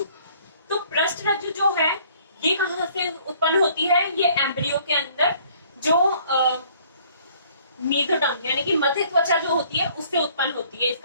तो पृष्ठरज्जु जो है ये कहां से उत्पन्न होती है, ये एम्ब्रियो के अंदर जो मेसोडर्म यानी कि मध्य त्वचा जो होती है उससे उत्पन्न होती है।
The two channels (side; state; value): both; inverted; correlation -0.58